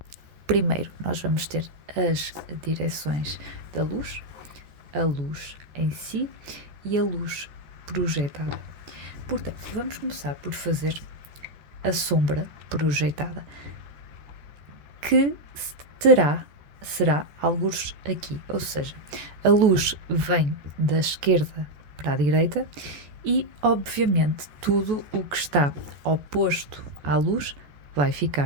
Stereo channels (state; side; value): late; left; 14 ms